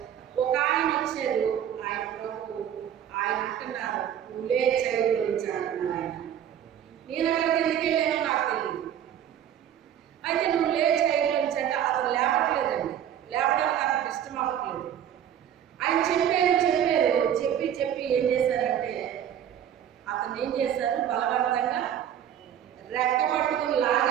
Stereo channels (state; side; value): quieter; left; 9.9 dB